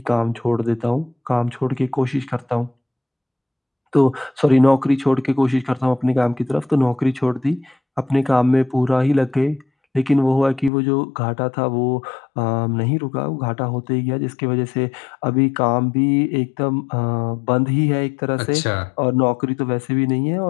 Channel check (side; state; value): right; drops out; at 10.7 s